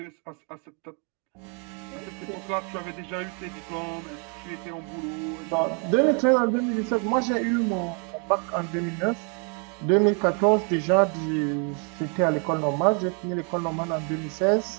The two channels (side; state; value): left; quieter; 37.5 dB